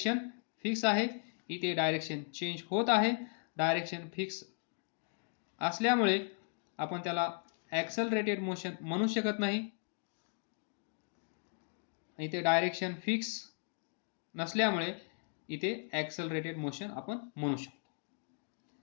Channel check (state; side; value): silent; right; 53 dB below the other